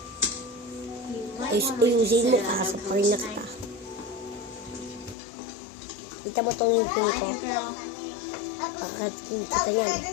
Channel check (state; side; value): drops out; right; at 5.2 s